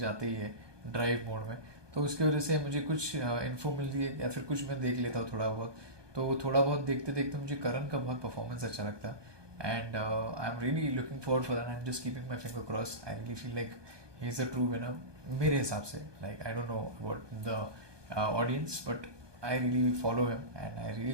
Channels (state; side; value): late; left; 1.2 ms